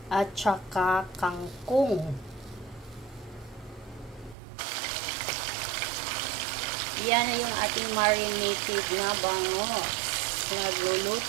at saka kangkong. Yan na yung ating marinated na bangus.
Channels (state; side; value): drops out; left; at 4.4 s